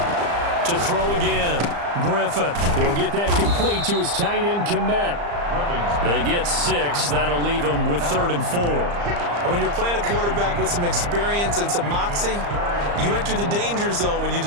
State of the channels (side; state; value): left; late; 35 ms